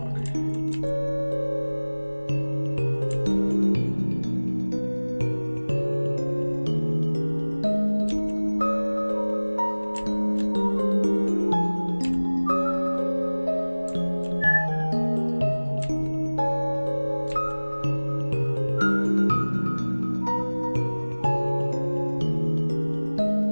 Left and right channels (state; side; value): inverted; both; correlation -1.00